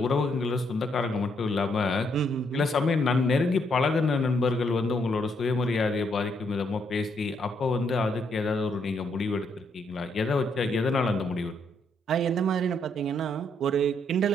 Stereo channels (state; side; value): normal; both; correlation 0.74